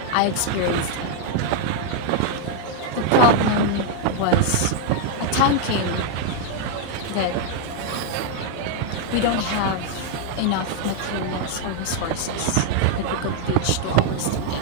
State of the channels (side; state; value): both; different; correlation 0.00